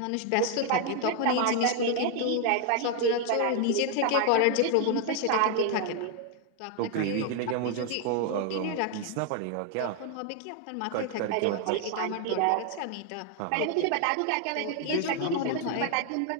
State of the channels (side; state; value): both; different; correlation 0.00